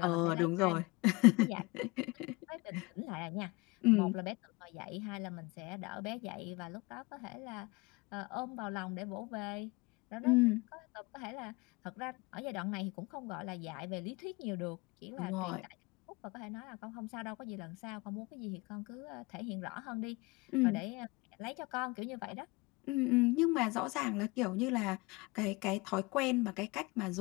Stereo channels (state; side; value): quieter; right; 24.8 dB